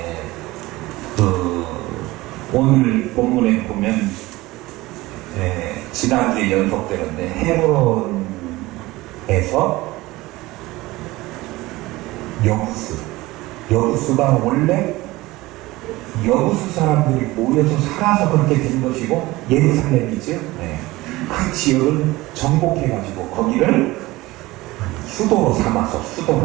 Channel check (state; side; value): quieter; left; 19.6 dB